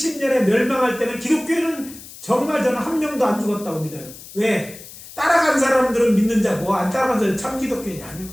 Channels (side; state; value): left; noise; hiss, 16 dB below the sound